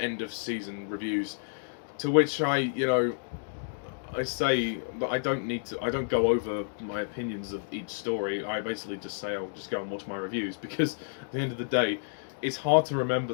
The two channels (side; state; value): right; silent; digital silence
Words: of season reviews, to which I say that I don't go over my opinions of each story. I basically just say I'll just go and watch my reviews, because at the end of the day, it's hard to